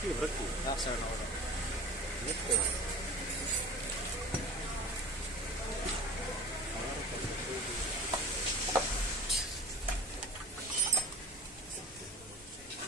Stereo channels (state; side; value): normal; both; correlation 0.37